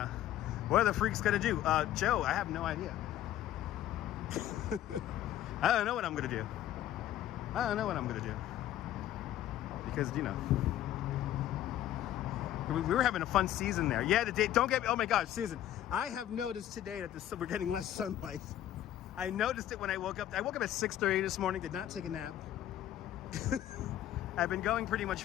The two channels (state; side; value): quieter; right; 12.3 dB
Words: What are the freaks going to do? Joe, I have no idea. I don't know what I'm going to do. I don't know what I'm going to do. Because, you know, we were having a fun season there. Yeah, the day, don't get me, oh my gosh, Susan. I have noticed today that we're getting less sunlight. I noticed it when I woke up. I woke up at 6:30 this morning, did not take a nap. I've been going pretty much